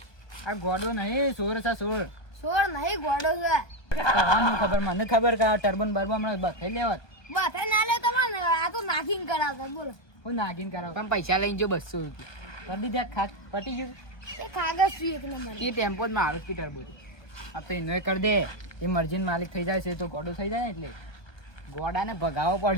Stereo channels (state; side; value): late; right; 1.2 ms